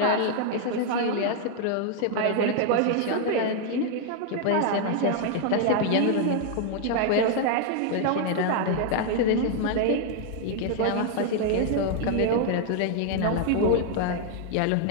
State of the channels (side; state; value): both; different; correlation 0.00